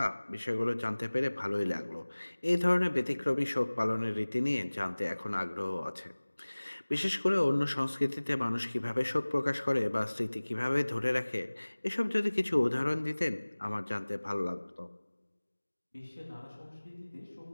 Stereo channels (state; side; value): inverted; both; correlation -1.00